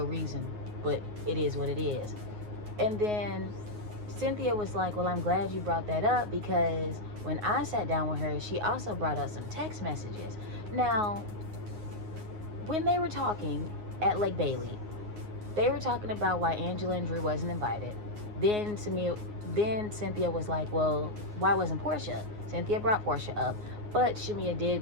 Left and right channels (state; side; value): late; left; 9.5 ms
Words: reason, but it is what it is. And then Cynthia was like, well, I'm glad you brought that up, because when I sat down with her, she also brought up some text messages. Now, when they were talking at Lake Bailey, they were talking about why Angela and Drew wasn't invited. Then Cynthia was like, well, why wasn't Portia? Cynthia brought Portia up, but Shamia